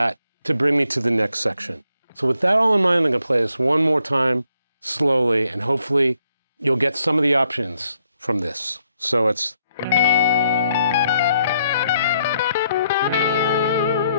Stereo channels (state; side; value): inverted; both; correlation -0.73